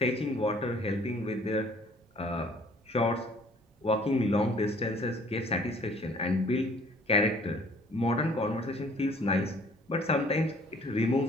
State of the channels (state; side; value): normal; both; correlation 0.56